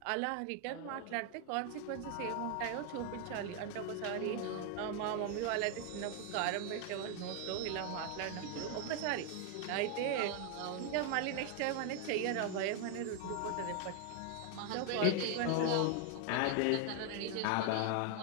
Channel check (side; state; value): both; different; correlation 0.00